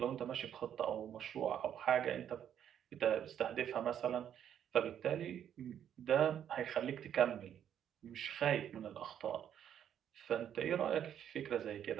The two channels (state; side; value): quieter; left; 9.6 dB